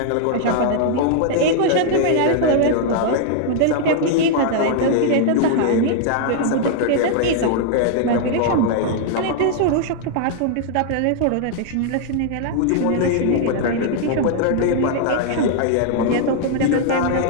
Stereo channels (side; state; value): both; different; correlation -0.01